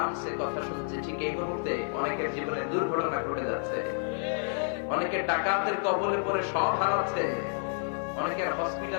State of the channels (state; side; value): silent; right; 58 dB below the other